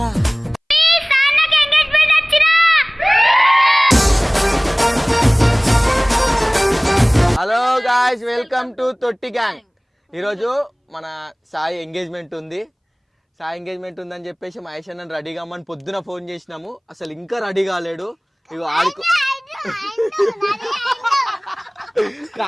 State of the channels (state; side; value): identical; both; correlation 1.00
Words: హలో గాయ్స్ వెల్కమ్ టు తొట్టి గ్యాంగ్. ఈరోజు మన సాయి ఎంగేజ్మెంట్ ఉంది. సాయి ఎంగేజ్మెంట్ ఉందని చెప్పేసి మహేష్ అన్న రెడీ కామని పొద్దున ఫోన్ చేసినాము. అసలు ఇంకా రెడీ కాలేడు. ఇగో ఆడుకో